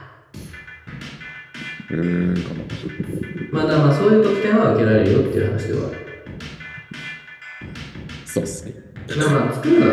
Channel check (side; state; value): both; identical; correlation 1.00